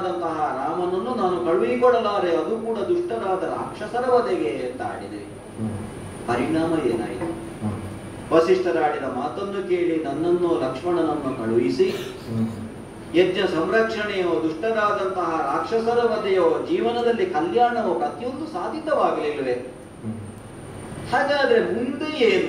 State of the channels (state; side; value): identical; both; correlation 1.00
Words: ರಾಮನನ್ನು ನಾನು ಕಳುಹಿಕೊಡಲಾರೆ, ಅದು ಕೂಡ ದುಷ್ಟರಾದ ರಾಕ್ಷಸರ ವಧೆಗೆ ಅಂತ ಆಡಿದ್ರಿ. ಪರಿಣಾಮ ಏನಾಯಿತು? ವಸಿಷ್ಠರಾಡಿದ ಮಾತನ್ನು ಕೇಳಿ ನನ್ನನ್ನು ಲಕ್ಷ್ಮಣನನ್ನು ಕಳುಹಿಸಿ ಯಜ್ಞ ಸಂರಕ್ಷಣೆಯೋ ದುಷ್ಟರಾದಂತಹ ರಾಕ್ಷಸರ ವಧೆಯೋ ಜೀವನದಲ್ಲಿ ಕಲ್ಯಾಣವೋ ಪ್ರತಿಯೊಂದು ಸಾಧಿತವಾಗಲಿಲ್ಲವೇ? ಹಾಗಾದ್ರೆ ಮುಂದೆ